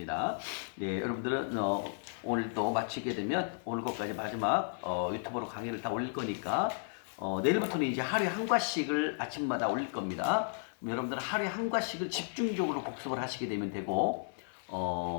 네, 여러분들은 오늘 또 마치게 되면 오늘 것까지 마지막 유튜브로 강의를 다 올릴 거니까 내일부터는 이제 하루에 한 과씩을 아침마다 올릴 겁니다. 그럼 여러분들은 하루에 한 과씩을 집중적으로 복습을 하시게 되면 되고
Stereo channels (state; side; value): silent; right; 55 dB below the other